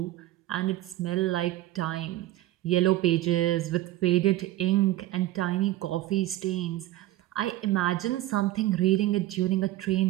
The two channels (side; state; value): left; quieter; 15.4 dB